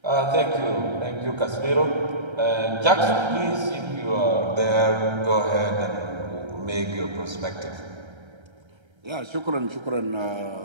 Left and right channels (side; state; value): left; late; 1.3 ms